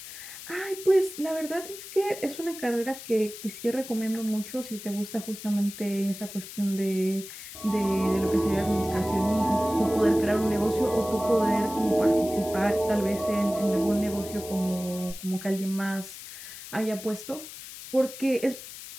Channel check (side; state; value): left; noise; hiss, 13 dB below the sound